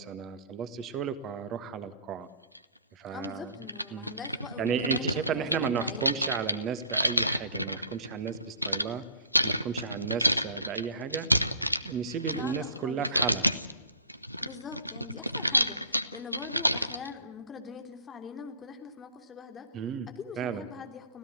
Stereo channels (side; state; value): both; inverted; correlation -0.48